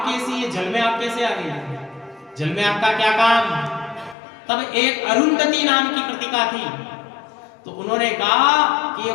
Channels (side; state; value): right; drops out; at 4.2 s